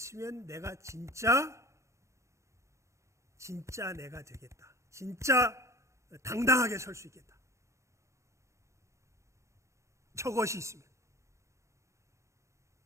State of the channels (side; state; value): left; late; 0.14 ms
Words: 내가 진짜 내가 되겠다. 진짜 당당하게 설 수 있겠다. 저것이 있으면.